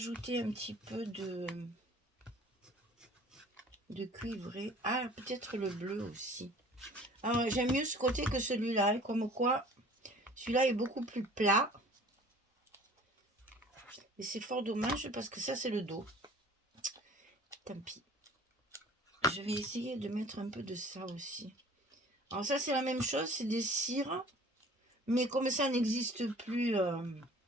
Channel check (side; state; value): both; normal; correlation 0.49